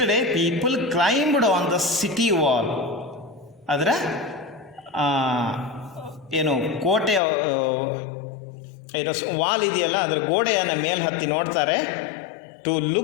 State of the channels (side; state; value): right; drops out; at 7.2 s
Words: day people climbed on the city wall. ಅದರ ಏನು ಕೋಟೆ ಏನೋ ವಾಲ್ ಇದೆಯಲ್ಲ, ಅದರ ಗೋಡೆಯನ್ನು ಮೇಲೆ ಹತ್ತಿ ನೋಡ್ತಾರೆ. To